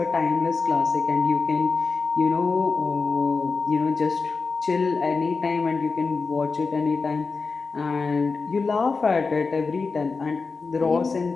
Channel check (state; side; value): quieter; right; 4.4 dB